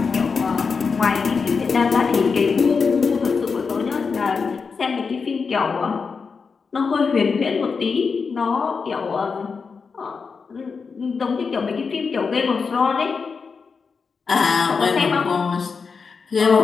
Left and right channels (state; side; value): quieter; right; 5.2 dB